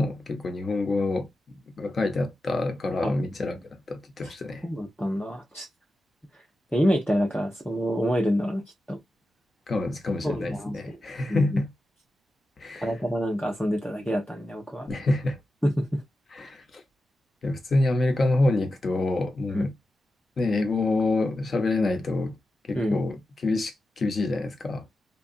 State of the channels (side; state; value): both; normal; correlation 0.91